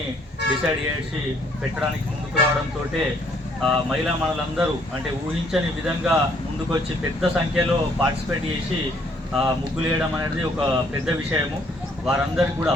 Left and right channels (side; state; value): both; normal; correlation 0.65